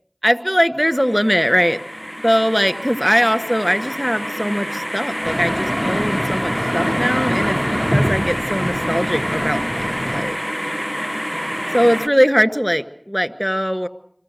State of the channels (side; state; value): both; identical; correlation 1.00